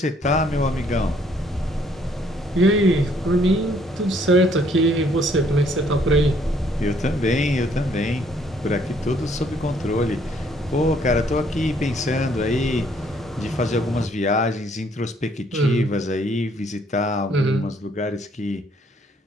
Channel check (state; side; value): normal; both; correlation 0.65